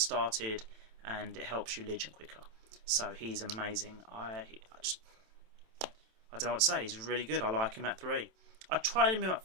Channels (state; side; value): late; left; 27 ms